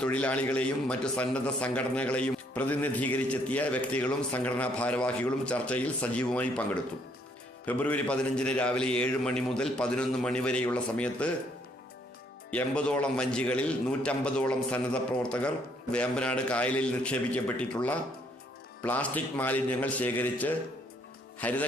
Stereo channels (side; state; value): both; normal; correlation 0.68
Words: തൊഴിലാളികളെയും മറ്റു സന്നദ്ധ സംഘടനകളെയും പ്രതിനിധീകരിച്ചെത്തിയ വ്യക്തികളും സംഘടനാ ഭാരവാഹികളും ചർച്ചയിൽ സജീവമായി പങ്കെടുത്തു. ഫെബ്രുവരി 15 രാവിലെ 7 മണി മുതൽ 11 മണി വരെയുള്ള സമയത്ത് 80ഓളം വഞ്ചികളിൽ 150ഓളം സന്നദ്ധ പ്രവർത്തകർ വേമ്പനാട് കായലിൽ നിക്ഷേപിക്കപ്പെട്ടിട്ടുള്ള പ്ലാസ്റ്റിക് മാലിന്യങ്ങൾ ശേഖരിച്ച്